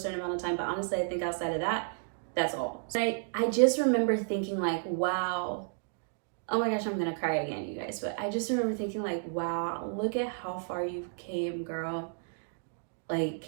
amount of time, but honestly, I think outside of that, that's all. I just remember thinking like, wow, oh my gosh, I'm gonna cry again, you guys, but I just remember thinking like, wow, look at how far you've came, girl.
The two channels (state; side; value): silent; left; digital silence